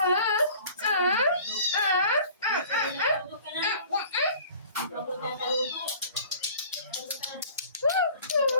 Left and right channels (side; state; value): both; inverted; correlation -0.47